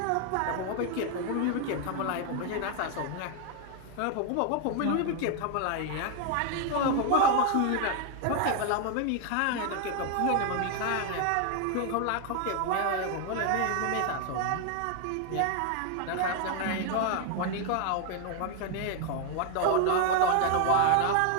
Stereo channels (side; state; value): both; different; correlation 0.00